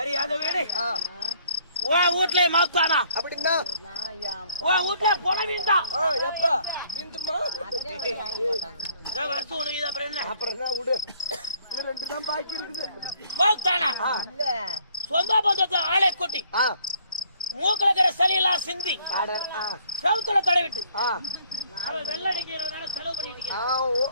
அத வீடு உன் வீட்டுல மாத்தானா அப்படின்னா உன் வீட்டுல போன வீண்டான். எப்ப வீண்டுமா? வருஷம் உனக்கு இது அப்புறம் என்ன? அப்புறம் என்ன விடு. 2 தான் பாக்கி இருக்குது. மாத்தானா சொந்த பந்தத்தை ஆளை கூட்டி மூக்குல இருக்கிற சளியெல்லாம் சிந்தி செவுத்துல தடவிட்டு அவன் வெள்ளடிக்கிறவனால செலவு பண்ணிட்டு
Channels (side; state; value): both; inverted; correlation -0.61